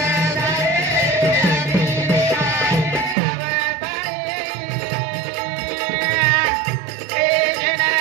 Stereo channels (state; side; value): drops out; left; at 3.2 s